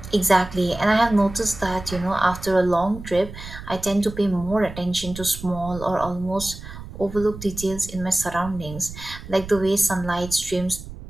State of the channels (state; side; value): noise; right; rumble, 13 dB below the sound